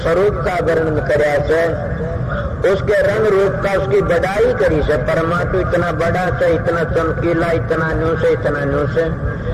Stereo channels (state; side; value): identical; both; correlation 1.00